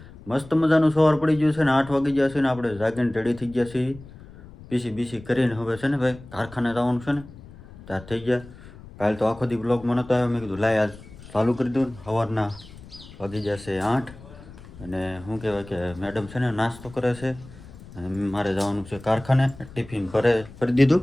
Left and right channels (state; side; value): noise; left; rumble, 18 dB below the sound